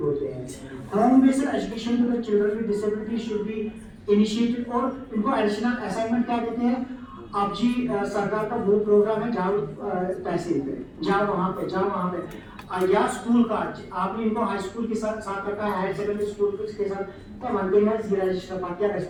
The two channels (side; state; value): both; identical; correlation 1.00